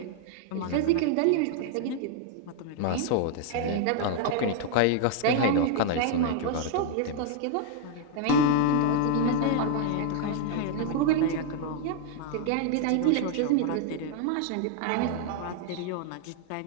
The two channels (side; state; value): both; different; correlation 0.00